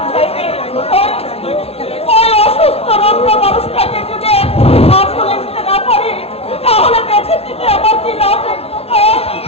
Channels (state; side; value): late; right; 0.29 ms